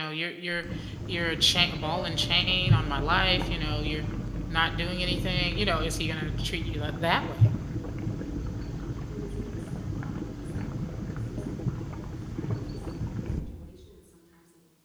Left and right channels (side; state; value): both; identical; correlation 1.00